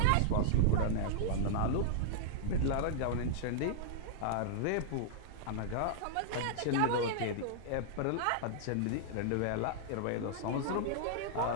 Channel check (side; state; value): both; different; correlation -0.02